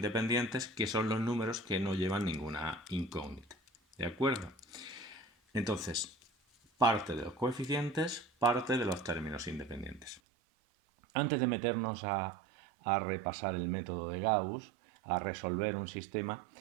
que son los números que no llevan ninguna incógnita. ¿De acuerdo? Entonces, parte de los coeficientes, parte de los términos independientes. Antes de meternos a repasar el método de Gauss, a resolver un sistema,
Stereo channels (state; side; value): drops out; left; at 10.2 s